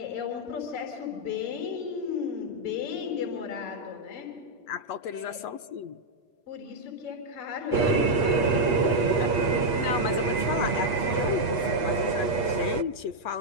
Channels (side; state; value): right; late; 8.3 ms